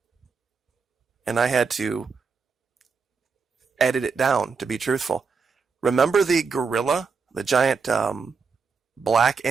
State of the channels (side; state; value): left; quieter; 5.2 dB